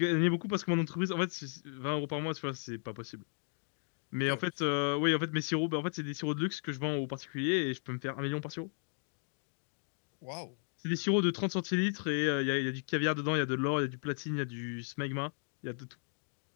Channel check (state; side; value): silent; right; 54 dB below the other